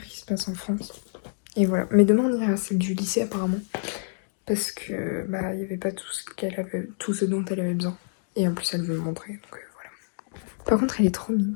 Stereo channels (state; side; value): silent; right; digital silence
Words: qui se passent en France. Et voilà. Mais demain, on ira à celle du lycée, apparemment. Parce que bah il y avait pas tout ce dont elle avait besoin. Et en plus elle veut me montrer, donc voilà. Par contre elle est trop mimes